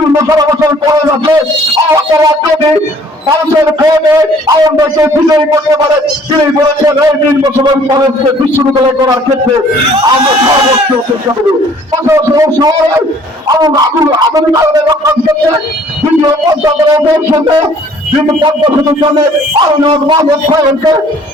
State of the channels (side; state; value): both; normal; correlation 0.57